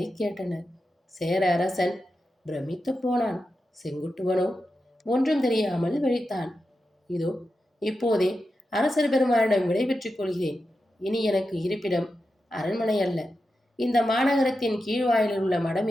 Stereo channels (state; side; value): normal; both; correlation 0.90